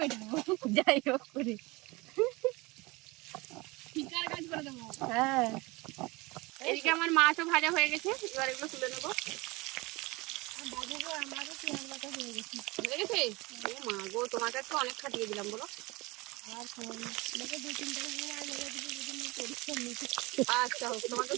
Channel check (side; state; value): left; quieter; 23.5 dB